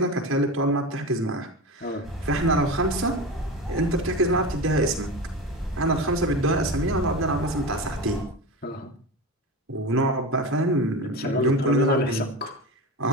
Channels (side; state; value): both; normal; correlation 0.25